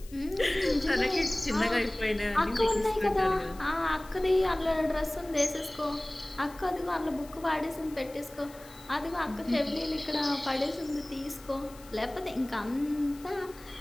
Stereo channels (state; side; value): noise; left; hiss, 22 dB below the sound